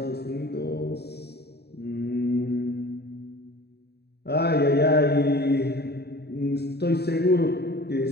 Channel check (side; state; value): right; late; 0.47 ms